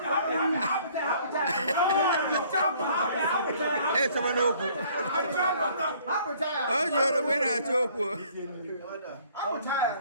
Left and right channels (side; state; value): both; inverted; correlation -0.58